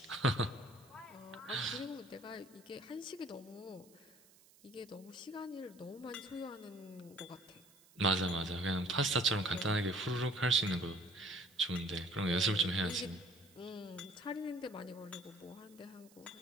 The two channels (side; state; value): right; noise; hiss, 26 dB below the sound